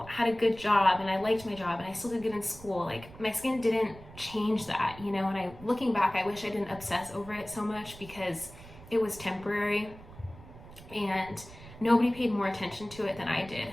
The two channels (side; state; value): right; noise; rumble, 18 dB below the sound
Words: had a good job, and I liked my job, and I still did good in school. Like my skin didn't change that, you know, and looking back, I wish I didn't obsess over it so much because it was temporary and nobody paid more attention to it than I did.